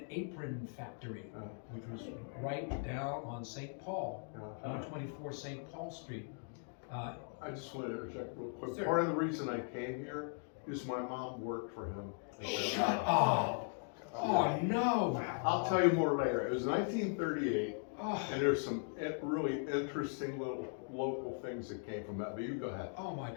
Apron Factory, which was right down on St. Paul, 124 St. Paul Street. I just want to interject real quick. Sir. Part of the reason I came here is my mom worked for him. Shut up! Oh no! I'll tell you more later. It was 1938, Oh, and there's some really interesting little local things that came from that. But you go ahead. oh my!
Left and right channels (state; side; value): silent; right; 52 dB below the other